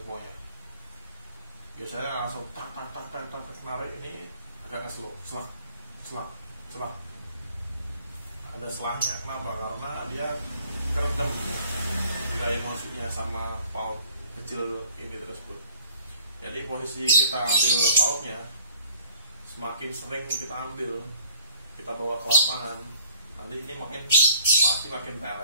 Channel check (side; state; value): both; inverted; correlation -0.56